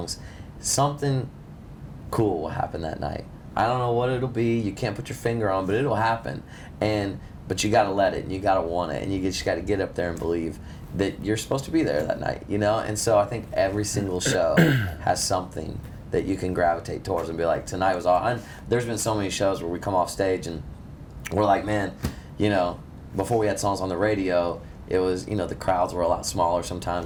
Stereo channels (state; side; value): identical; both; correlation 1.00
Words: something cool will happen that night. I don't know what it'll be. You can't put your finger on, but it'll happen. But you got to let it, and you got to want it, and you just got to get up there and believe that you're supposed to be there that night, And so I think every single show has something that you can gravitate towards and be like, tonight was all. And there's been so many shows where we come off stage and we're like, man, before we had songs on the radio, it was, the crowds were a lot smaller